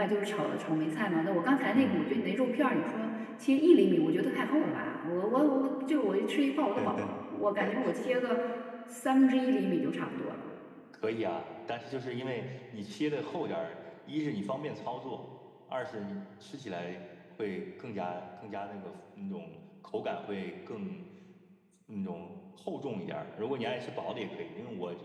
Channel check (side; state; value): both; identical; correlation 1.00